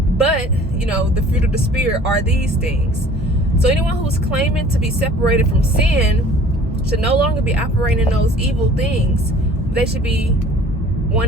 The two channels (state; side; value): normal; both; correlation 0.50